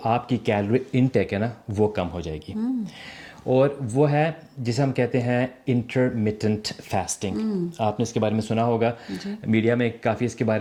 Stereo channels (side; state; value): both; identical; correlation 1.00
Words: آپ کی کیلوری انٹیک ہے نا وہ کم ہو جائے گی. اور وہ ہے جسے ہم کہتے ہیں انٹرمیٹنٹ فاسٹنگ. آپ نے اس کے بارے میں سنا ہوگا, میڈیا میں کافی اس کے